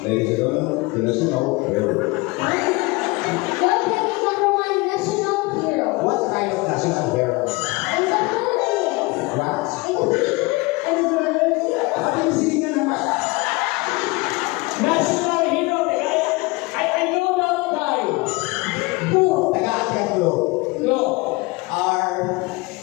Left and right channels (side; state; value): right; quieter; 24.5 dB